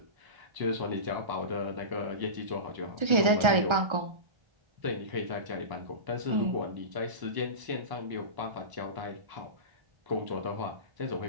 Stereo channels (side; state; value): left; late; 1.3 ms